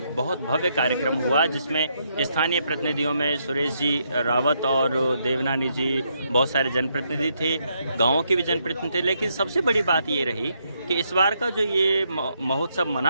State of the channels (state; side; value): inverted; both; correlation -0.77